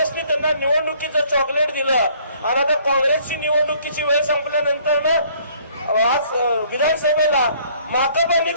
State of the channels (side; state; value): both; inverted; correlation -0.60